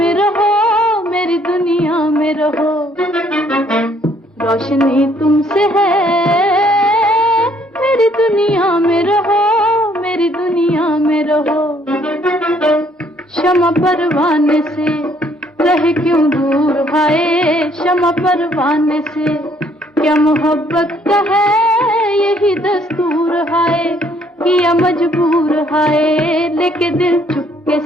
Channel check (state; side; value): normal; both; correlation 0.65